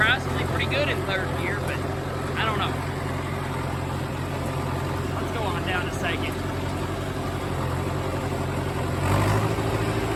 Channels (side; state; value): both; identical; correlation 1.00